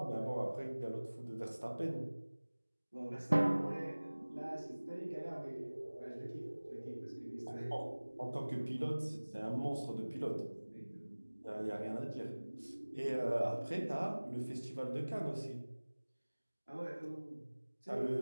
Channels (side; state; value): both; inverted; correlation -1.00